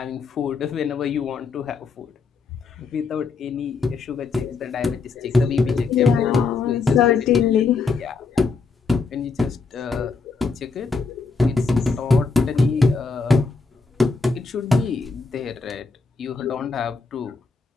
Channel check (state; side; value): quieter; right; 4.5 dB